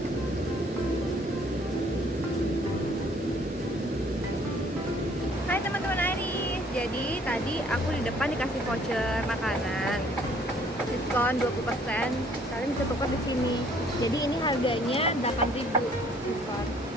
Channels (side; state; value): both; normal; correlation 0.60